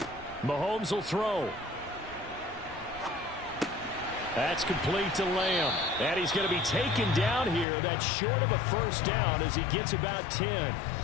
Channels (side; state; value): right; drops out; at 7.7 s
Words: Mahomes will throw. That's complete to Lamb. And he's going to be taken down here. That's short of a 1st down as he gets about 10.